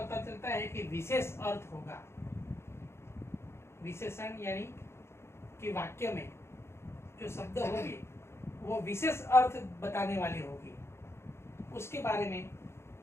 चलता है कि विशेष अर्थ होगा। विशेषण यानी कि वाक्य में जो शब्द होंगे वो विशेष अर्थ बताने वाले होंगे। उसके बारे में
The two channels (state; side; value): late; right; 0.12 ms